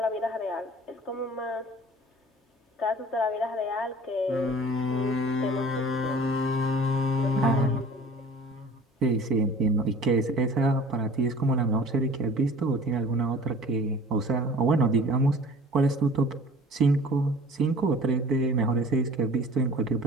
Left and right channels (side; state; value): both; normal; correlation 0.46